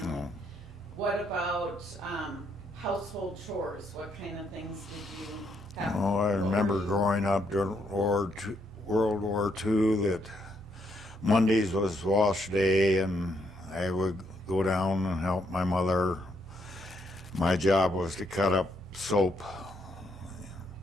No. What about household chores? What kind of things did you have? Oh, I remember growing up during World War II that Mondays was wash day, and I would go down and help my mother. My job was to cut up soap.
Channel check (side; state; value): both; normal; correlation 0.74